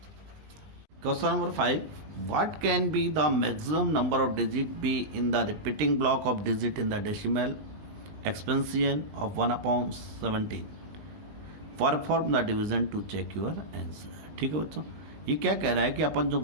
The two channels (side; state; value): left; late; 20 ms